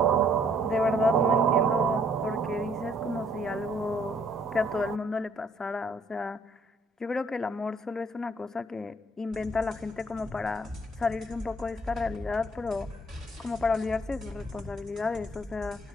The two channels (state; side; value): normal; both; correlation 0.64